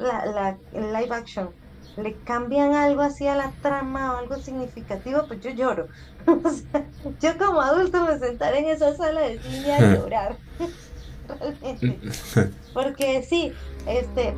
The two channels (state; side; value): identical; both; correlation 1.00